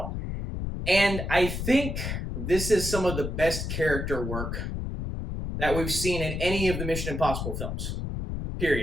And I think this is some of the best character work that we've seen in any of the Mission Impossible films.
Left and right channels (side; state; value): left; noise; rumble, 4 dB below the sound